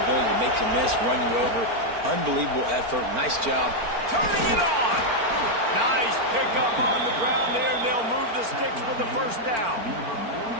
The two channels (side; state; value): left; late; 4.4 ms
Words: ability to make you miss, run you over. Unbelievable effort. Nice job. Turning it on. Nice pickup on the ground there, and they'll move the sticks with the first down.